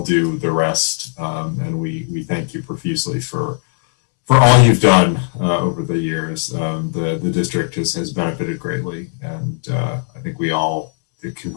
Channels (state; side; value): silent; right; 67 dB below the other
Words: due the rest, and we thank you profusely for all you've done over the years. The district has benefited greatly, and I think we all, the